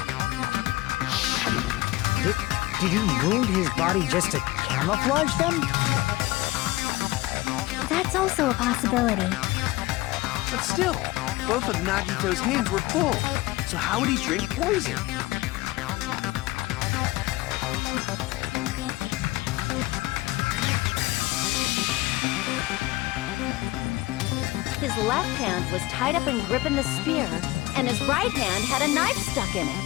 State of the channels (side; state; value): right; quieter; 19.1 dB